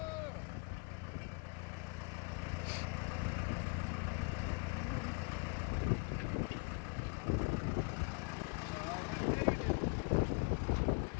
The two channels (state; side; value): quieter; right; 32.4 dB